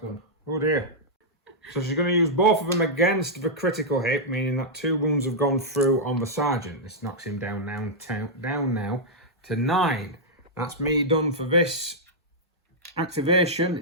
gun? Oh dear. So she's going to use both of them against the critical hit, meaning that 2 wounds have gone through on the sergeant. This knocks him down now to 9. That's me done for this activation.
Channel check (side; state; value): both; normal; correlation -0.08